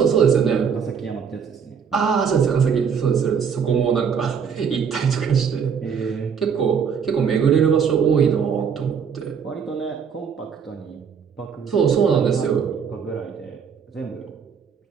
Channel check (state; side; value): quieter; left; 6.8 dB